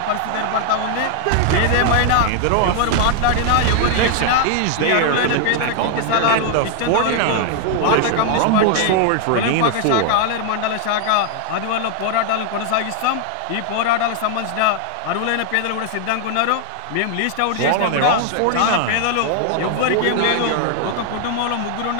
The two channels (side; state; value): both; different; correlation 0.00